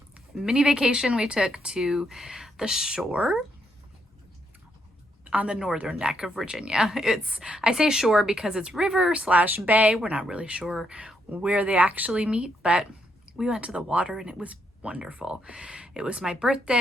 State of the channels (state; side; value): normal; both; correlation 0.77